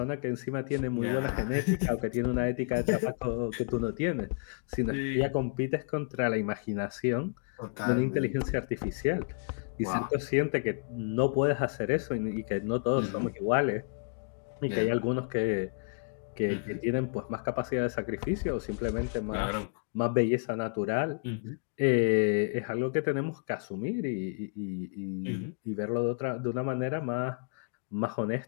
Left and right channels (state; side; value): quieter; right; 36.8 dB